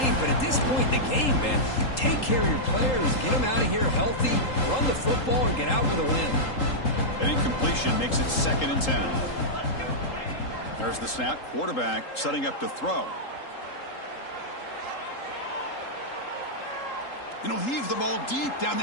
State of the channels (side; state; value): right; late; 3.8 ms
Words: but at this point in the game, man, take care of your players, get them out of here healthy, run the football, and get out with a win. An incompletion makes it 2nd and 10. There's the snap. Quarterback setting up to throw. And he'll heave the ball deep down